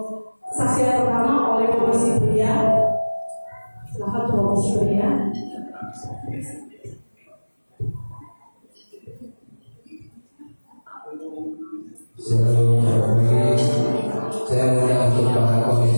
saksi yang pertama oleh Komisi Pria. Silakan Komisi Pria. Saya mengundang untuk para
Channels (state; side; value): inverted; both; correlation -1.00